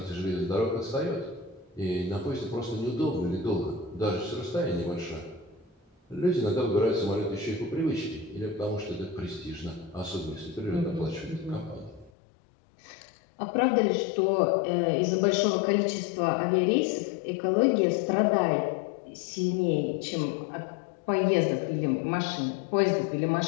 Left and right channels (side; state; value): right; drops out; at 12.1 s